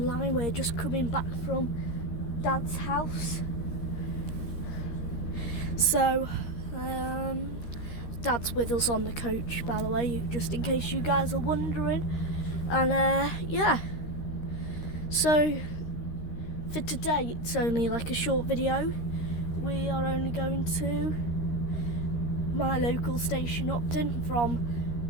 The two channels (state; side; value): late; right; 13 ms